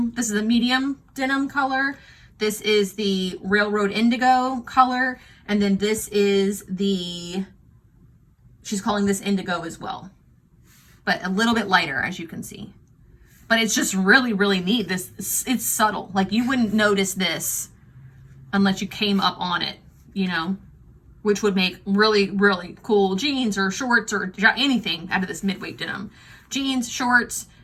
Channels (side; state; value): both; identical; correlation 1.00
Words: This is a medium denim color. This is the railroad indigo color. And then this is the, she's calling this indigo as well, but a little bit lighter, as you can see. But it's just really, really neat. This, it's subtle. Like you wouldn't notice this unless you came up on it, you know, which would make really, really cool jeans or shorts or anything out of this midway denim. Jeans, shorts,